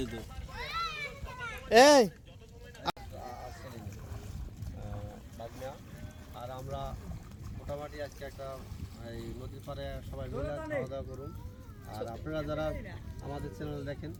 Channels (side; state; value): both; identical; correlation 1.00